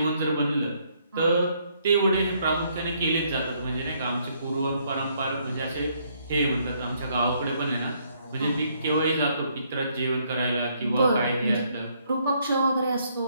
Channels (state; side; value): inverted; both; correlation -0.70